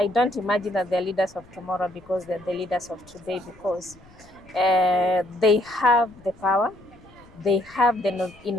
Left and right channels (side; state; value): left; noise; rumble, 25 dB below the sound